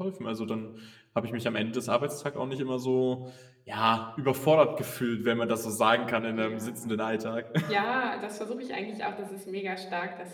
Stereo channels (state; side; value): identical; both; correlation 1.00